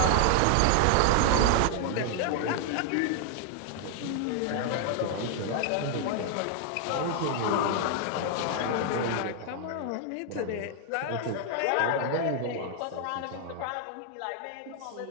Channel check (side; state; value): both; different; correlation 0.00